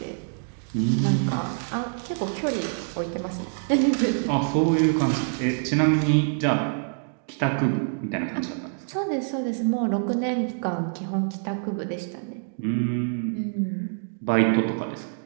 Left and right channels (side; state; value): left; silent; digital silence